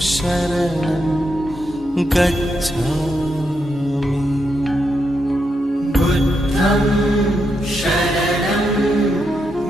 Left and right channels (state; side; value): normal; both; correlation 0.82